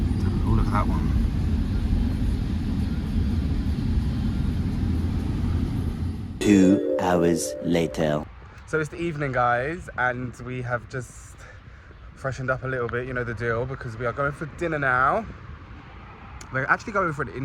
Oh, look at that one. Two hours later. So it's the evening, guys, and we have just freshened up a little bit, you know the deal, because we are going for dinner now. We're actually going for an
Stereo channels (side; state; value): both; identical; correlation 1.00